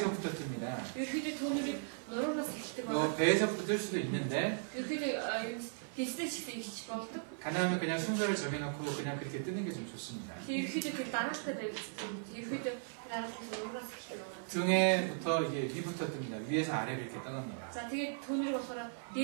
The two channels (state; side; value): silent; left; 53 dB below the other